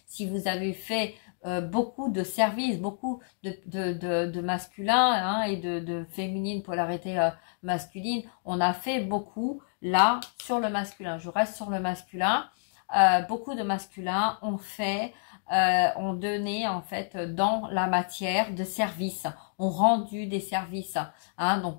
Si vous avez fait beaucoup de services, beaucoup de masculins, hein, et de féminine, polarité masculine, on a fait beaucoup là sur le masculin. Je reste sur le masculin. Beaucoup de masculins ont donné en fait dans la matière de service, ont rendu des services, hein,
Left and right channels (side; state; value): right; silent; digital silence